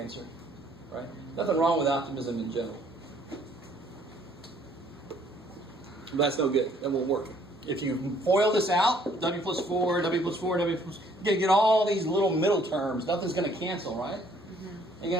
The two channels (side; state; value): both; normal; correlation 0.62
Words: right? Nothing wrong with optimism in general. But that's no good. That won't work. If you FOIL this out, W plus 4, W plus 4, W plus... You're going to get all these little middle terms. Nothing's going to cancel, right? You're